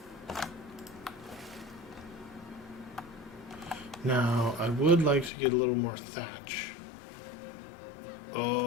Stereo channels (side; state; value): right; drops out; at 5.3 s